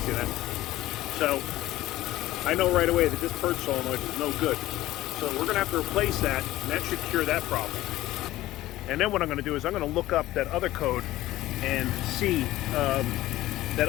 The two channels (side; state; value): right; quieter; 15.9 dB